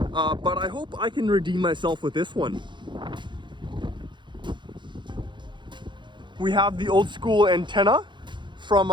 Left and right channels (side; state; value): left; late; 0.23 ms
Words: I hope I can redeem myself with this one. We have the old school antenna from